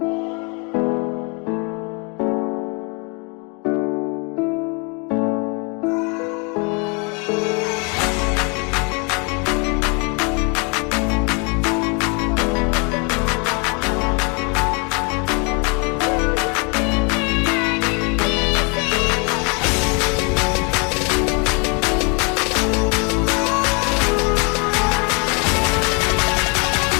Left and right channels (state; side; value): quieter; right; 33.6 dB